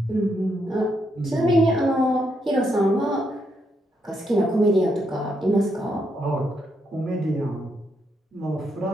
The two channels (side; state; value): both; normal; correlation 0.79